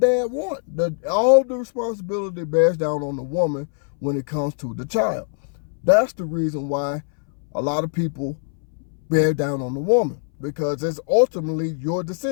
wants. All the responsibility bears down on the woman when it comes to the child. That's the reason why a lot of people bear down on the woman, because it's ultimately your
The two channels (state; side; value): silent; right; 62 dB below the other